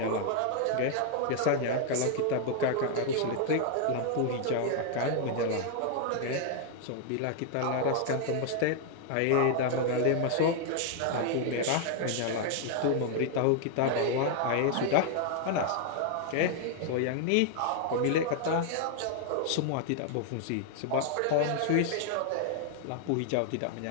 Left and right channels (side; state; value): both; different; correlation 0.00